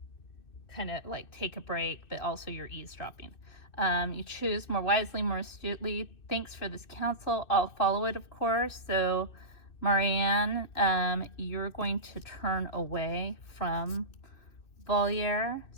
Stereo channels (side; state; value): right; late; 2.6 ms